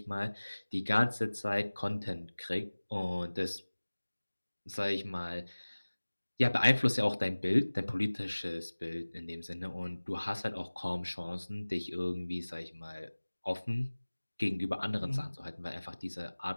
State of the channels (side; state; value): both; inverted; correlation -1.00